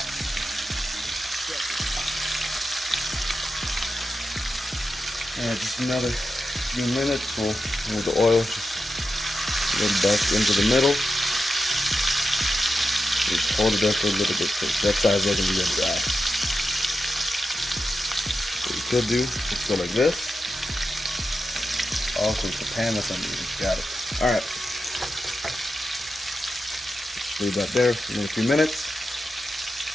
And just another few minutes, we'll move the oil just a little back into the middle. Just hold it there for a little bit because that side's looking to get dry. What you could do is go like this. Also, it's the pan that's underneath. Got it. Alright. Leave that there for another few minutes.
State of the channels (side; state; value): both; normal; correlation 0.89